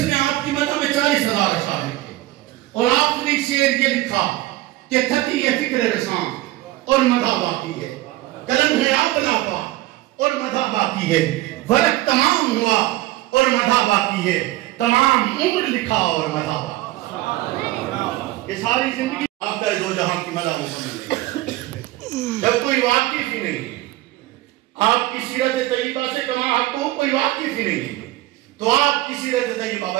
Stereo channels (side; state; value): left; quieter; 17.2 dB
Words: آپ کی مدح میں 40,000 اشعار لکھے اور آپ نے شعر یہ لکھا کہ تھکی ہے فکر رساں اور مدح باقی ہے، قلم ہے آپ لاپا اور مدح باقی ہے، ورق تمام ہوا اور مدح باقی ہے، تمام عمر لکھا اور مدح باقی۔ یہ ساری زندگی آپ کا دو جہاں کی مدح مکمل نہیں، جب کوئی واقف ہی نہیں آپ کی سیرت طیبہ سے کما حق کو کوئی واقف ہی نہیں تو آپ کی سیرت طیبہ